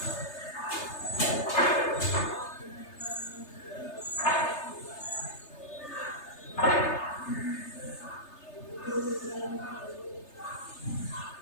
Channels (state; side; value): late; right; 3.3 ms